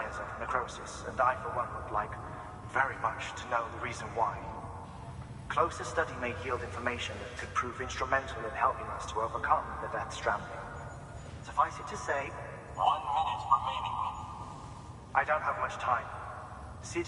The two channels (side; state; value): both; identical; correlation 1.00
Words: of necrosis, and I, for one, would like very much to know the reason why. Closer study may yield information that could prove instrumental in helping us to overcome the death stranding. Suffice it to say, 1 minute remaining. I don't have much time. See